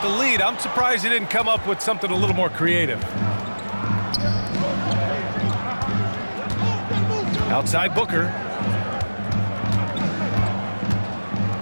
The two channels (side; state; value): both; inverted; correlation -1.00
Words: the lead, I'm surprised he didn't come up with something a little more creative. Outside Booker.